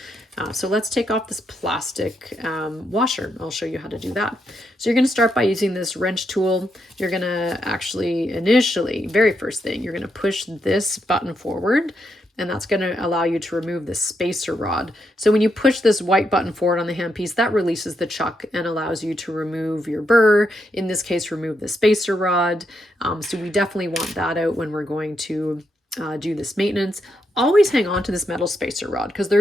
So let's take off this plastic washer. I'll show you how to do that. So you're going to start by using this wrench tool. You're going to actually initially, very first thing, you're going to push this button forward, and that's going to allow you to remove the spacer rod. So when you push this white button forward on the handpiece, that releases the chuck and allows you to remove your burr, in this case, remove the spacer rod. So we definitely want that out when we're going to do this maintenance. Always hang on to this metal spacer rod because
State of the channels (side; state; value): both; normal; correlation 0.81